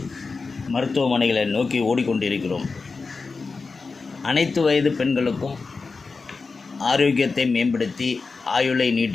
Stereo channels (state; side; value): quieter; right; 4.3 dB